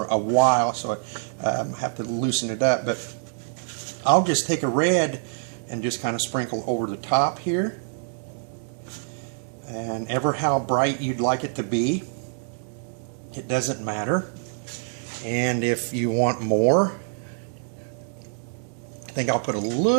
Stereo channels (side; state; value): left; silent; digital silence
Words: a while, so I have to loosen it up, but I'll just take a red and just kind of sprinkle over the top here, and ever how bright you'd like it to be, it doesn't matter. And if you want more, I think I'll put a